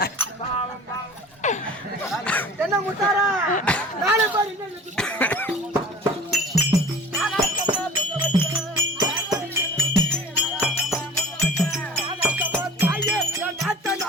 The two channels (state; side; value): normal; both; correlation 0.42